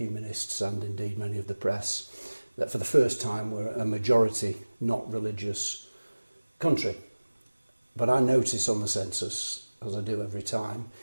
and indeed many of the press that for the first time we're a majority, not religious country. But I notice on the census, as I do every time,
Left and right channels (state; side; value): inverted; both; correlation -1.00